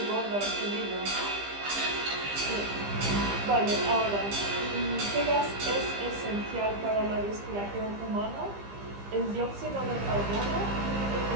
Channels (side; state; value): left; late; 15 ms